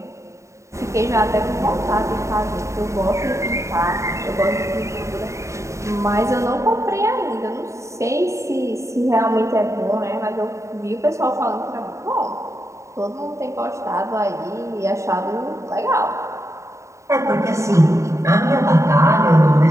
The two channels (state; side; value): late; left; 0.14 ms